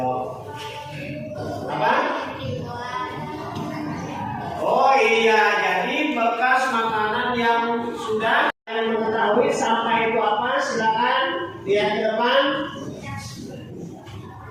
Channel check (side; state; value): both; identical; correlation 1.00